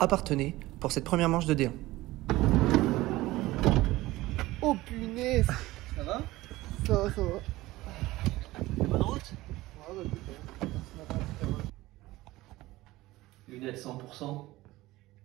Parthenay pour cette première manche de D1. Oh punaise! Ça va? Ça va, ça va. Bonne route? Ouais, bah, écoute, Lunettes 100%.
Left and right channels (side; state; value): left; quieter; 18.2 dB